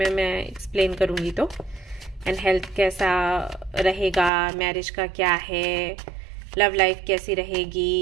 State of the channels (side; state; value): left; drops out; at 4.3 s